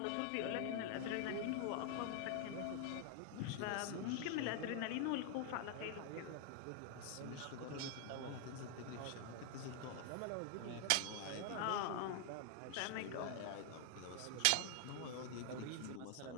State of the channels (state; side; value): different; both; correlation 0.00